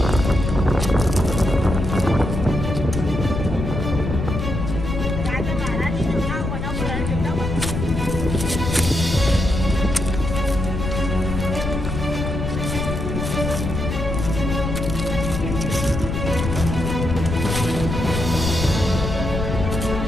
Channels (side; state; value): left; noise; rumble, 3 dB below the sound